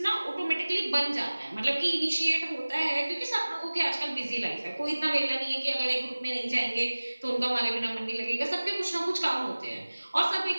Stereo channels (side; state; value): both; inverted; correlation -1.00